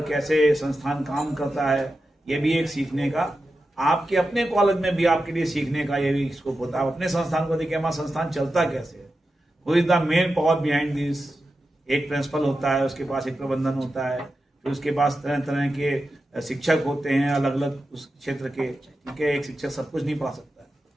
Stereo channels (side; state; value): both; normal; correlation 0.91